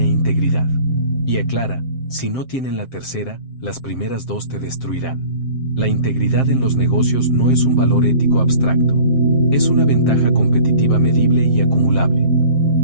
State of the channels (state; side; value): late; right; 7.6 ms